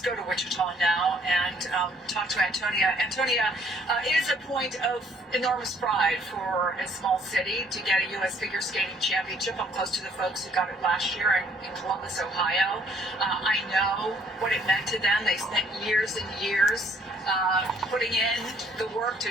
to Wichita now and talk to Antonia. Antonia, it is a point of enormous pride for a small city to get a U.S. figure skating championship. I'm close to the folks who got it last year in Columbus, Ohio. I know what it meant to them. They spent years and years putting in the work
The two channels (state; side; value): normal; both; correlation 0.62